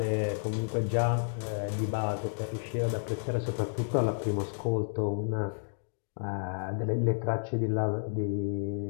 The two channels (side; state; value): right; silent; digital silence